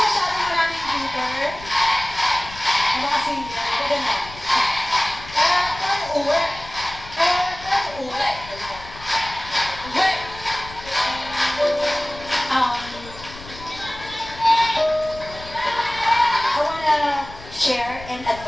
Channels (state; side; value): noise; left; rumble, 16 dB below the sound